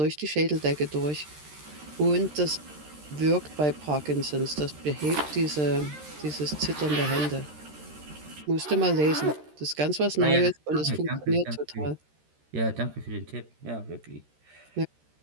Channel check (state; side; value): late; left; 13 ms